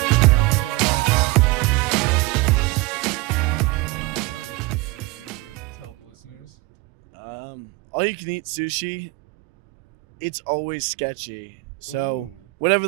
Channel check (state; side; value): quieter; left; 22.4 dB